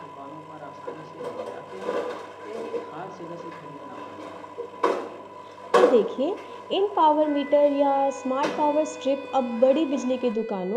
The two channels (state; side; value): identical; both; correlation 1.00